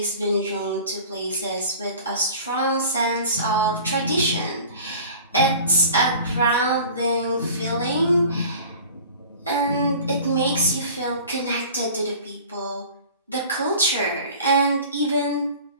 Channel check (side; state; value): both; inverted; correlation -0.42